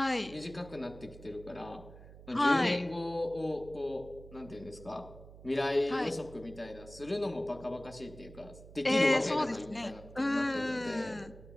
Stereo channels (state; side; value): noise; right; hum, 17 dB below the sound